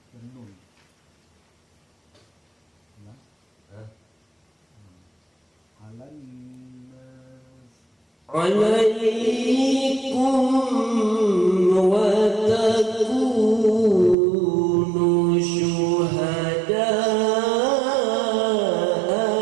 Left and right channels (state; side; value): drops out; left; at 14.2 s